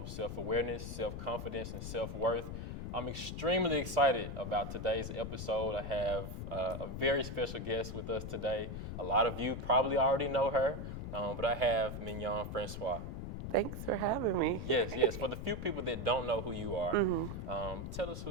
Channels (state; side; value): noise; left; rumble, 6 dB below the sound